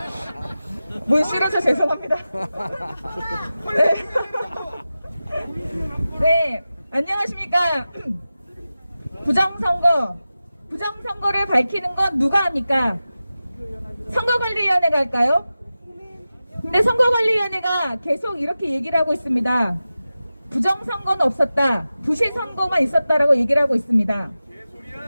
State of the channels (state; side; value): inverted; both; correlation -0.94